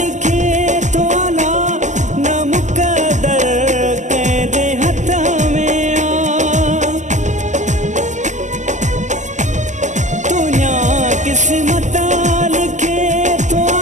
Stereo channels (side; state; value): left; late; 0.34 ms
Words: तो आला न मुकदर कहदे हथ में आ दुनिया किस्मत लिखे तो